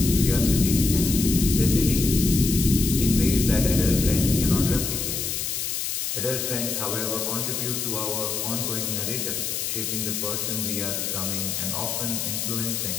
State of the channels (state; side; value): noise; left; hiss, 2 dB below the sound